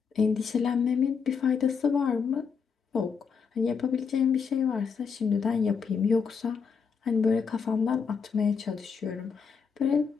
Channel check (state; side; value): quieter; right; 6.0 dB